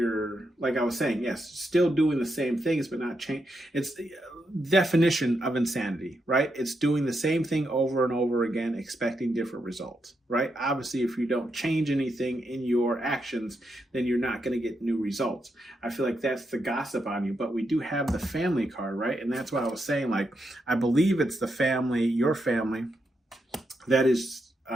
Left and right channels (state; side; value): normal; both; correlation 0.83